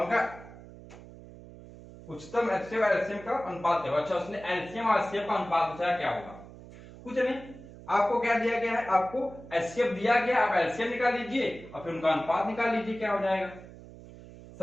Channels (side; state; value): right; noise; hum, 17 dB below the sound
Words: उनका उच्चतम एचसीएफ और एलसीएम का अनुपात है। अच्छा उसने एलसीएम और एचसीएफ का अनुपात पूछा क्या होगा? कुछ नहीं, आपको क्या दिया गया है, आपको एचसीएफ दिया गया, आप एलसीएम निकाल लीजिए और फिर उनका अनुपात निकाल लीजिए क्या हो जाएगा।